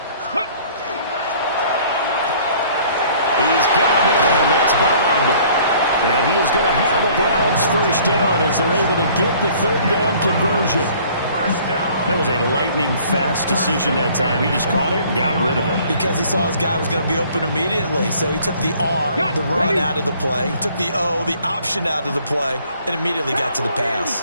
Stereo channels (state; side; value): inverted; both; correlation -0.55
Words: He's got him in. That's Bond. And he is going to have a Browns 1st down as they're able to get the 3rd down conversion. That was a lightning-fast decision that time. He just caught it and got rid of it. Because he saw his guy was going to be open immediately. So he took the R, the run, out of the play. He took the O, the option, out of the play, and immediately got to the